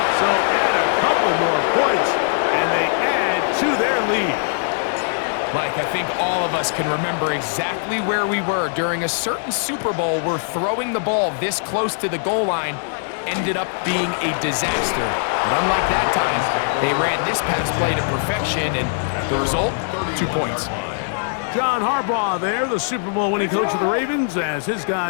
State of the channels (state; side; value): silent; right; digital silence